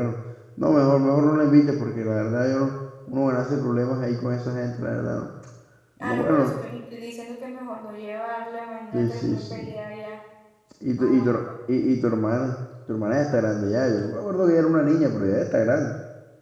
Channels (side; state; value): both; identical; correlation 1.00